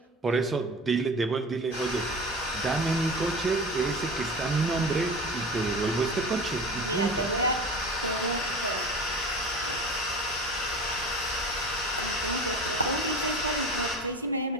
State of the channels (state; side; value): normal; both; correlation 0.34